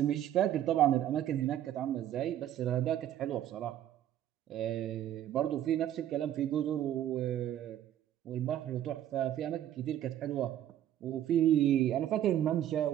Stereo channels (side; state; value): left; quieter; 11.5 dB